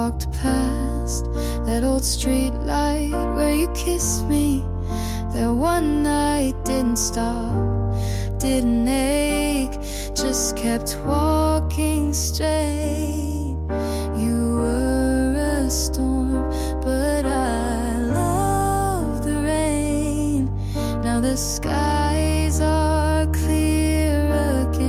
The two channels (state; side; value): identical; both; correlation 1.00